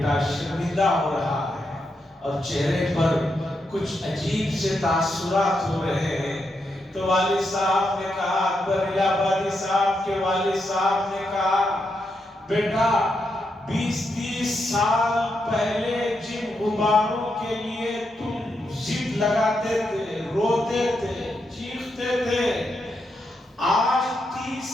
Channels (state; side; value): normal; both; correlation 0.83